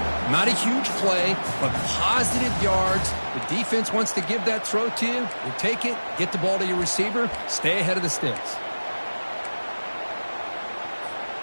Not a huge play, but positive yards. The defense wants to give that throw to you. You take it, get the ball to your receiver, stay ahead of the sticks.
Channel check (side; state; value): both; inverted; correlation -1.00